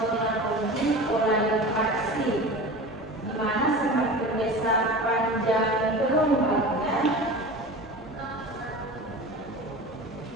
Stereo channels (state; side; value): normal; both; correlation 0.33